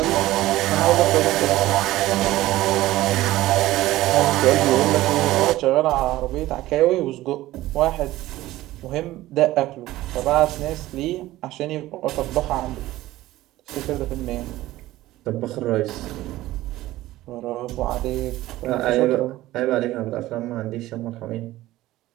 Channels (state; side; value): quieter; left; 16.3 dB